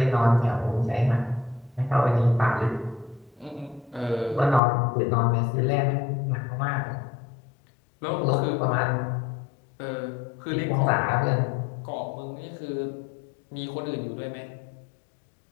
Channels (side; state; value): right; drops out; at 4.6 s